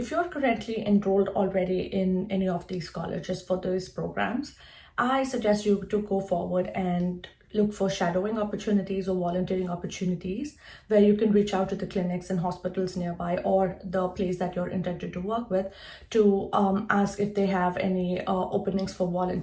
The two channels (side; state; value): both; identical; correlation 1.00